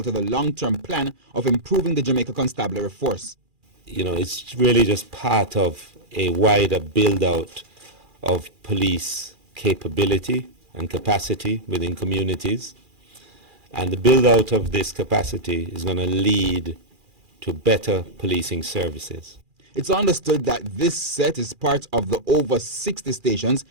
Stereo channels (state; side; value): late; left; 2.4 ms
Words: to the long-term plan of improving the Jamaica Constabulary force. You know, it's really just part of a wider build-out of police capability and capacity within communities. And the build-out of this capacity is going to lead to better policing services. It's understood that this set is part of the over 60 stations